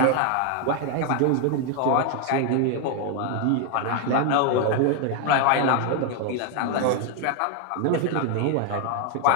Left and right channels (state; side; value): different; both; correlation 0.01